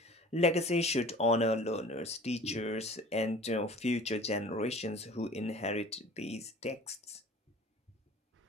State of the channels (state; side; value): normal; both; correlation 0.44